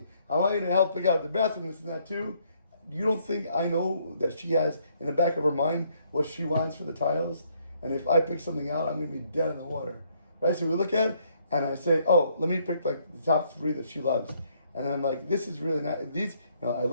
I want you to help pick out the bathroom, this and that too. You don't think I know that she has in the back of her mind what she wants for the tiles? And if I pick something out, I'm going to be dead in the water. Right? So we look at it, and I say, oh, let me pick like the top 3 that she loves. And I'm like, this is really nice. These, I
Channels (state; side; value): inverted; both; correlation -0.69